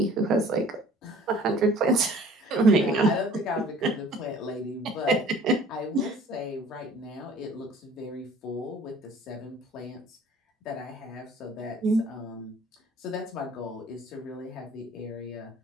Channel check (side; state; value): both; normal; correlation 0.51